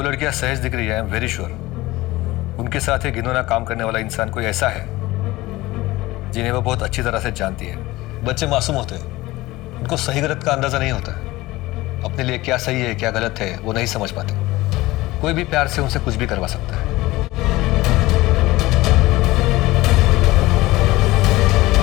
लड़कियां सहज दिख रही है, आई एम वेरी श्योर उनके साथ एक घिनौना काम करने वाला इंसान कोई ऐसा है जिन्हें वो बहुत अच्छी तरह से जानती है। बच्चे मासूम होते हैं, उनको सही गलत का अंदाजा नहीं होता है, अपने लिए क्या सही है क्या गलत है वो नहीं समझ पाते। कोई भी प्यार से उनसे कुछ भी करवा सकता है।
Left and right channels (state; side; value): quieter; right; 18.9 dB